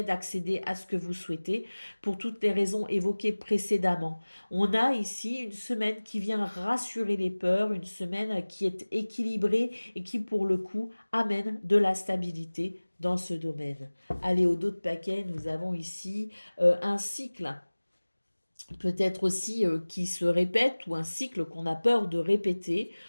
d'accéder à ce que vous souhaitez pour toutes les raisons évoquées précédemment. On a ici une semaine qui vient rassurer les peurs, une semaine qui est équilibrée et qui, pour le coup, amène de la stabilité dans ce domaine. Allez, au dos de paquet, nous avons ici un cycle peut-être aussi qui se répète ou un cycle qu'on a peur de répéter.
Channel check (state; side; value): inverted; both; correlation -1.00